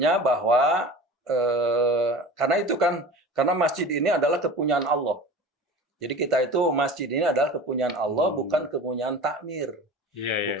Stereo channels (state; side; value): normal; both; correlation 0.36